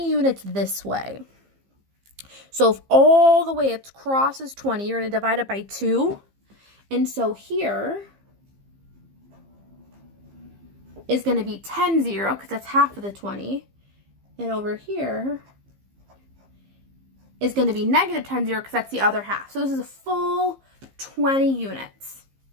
units this way. So if all the way it's crosses 20, you're going to divide it by 2. And so here is going to be 10, 0, because that's half of the 20. And over here is going to be negative 10, 0, because that's the other half. So this is a full 20 units.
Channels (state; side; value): late; left; 15 ms